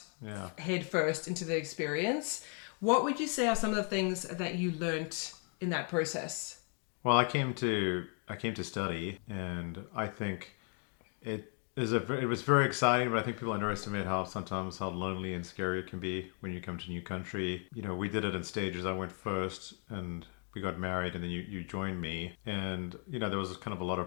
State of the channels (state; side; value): quieter; right; 38.9 dB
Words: head first into the experience. What would you say are some of the things that you learned in that process? Well, I came to study, and I think it was very exciting, but I think people underestimate how lonely and scary it can be when you come to a new country. You know, we did it in stages. I went first and we got married, and then you joined me. And, you know, there was kind of a lot